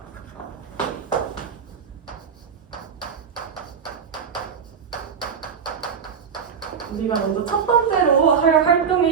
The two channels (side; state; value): left; quieter; 6.6 dB